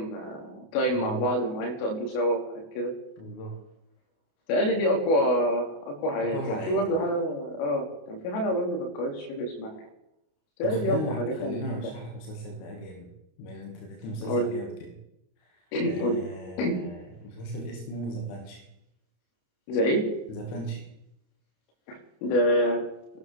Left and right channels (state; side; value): late; right; 28 ms